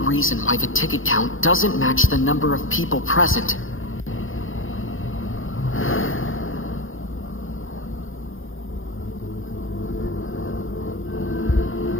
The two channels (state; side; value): late; right; 0.59 ms